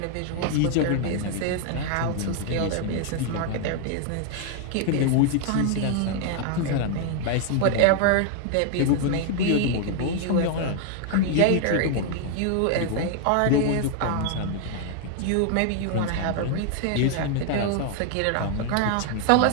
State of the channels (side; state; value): both; different; correlation 0.00